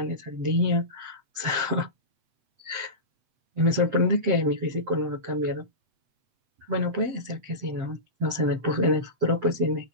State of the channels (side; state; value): left; late; 7.7 ms